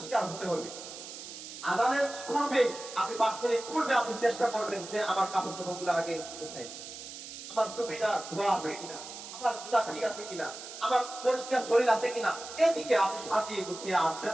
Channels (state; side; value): noise; right; hiss, 12 dB below the sound